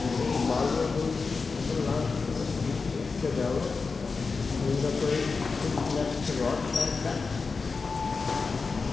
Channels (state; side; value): quieter; right; 4.5 dB